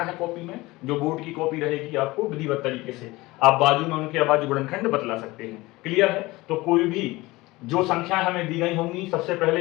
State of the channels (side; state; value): right; quieter; 20.7 dB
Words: है कॉपी में, जो बोर्ड की कॉपी रहेगी आपको विधिवत तरीके से आप बाजू में उनके अभाज्य गुणनखंड बतला सकते हैं। क्लियर है? तो कोई भी जो संख्याएं हमें दी गई होंगी सबसे